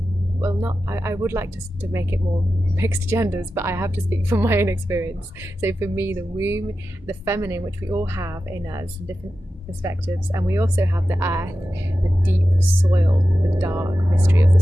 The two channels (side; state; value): both; normal; correlation 0.92